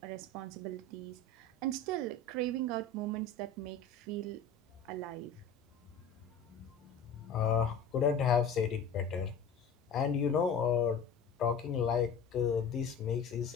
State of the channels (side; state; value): right; quieter; 4.1 dB